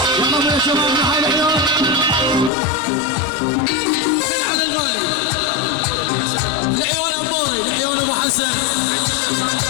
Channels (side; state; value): right; drops out; at 2.5 s